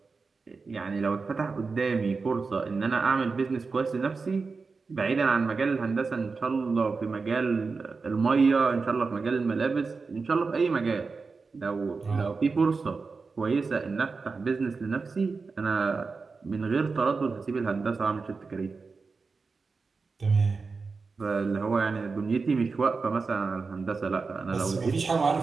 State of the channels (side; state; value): left; quieter; 4.5 dB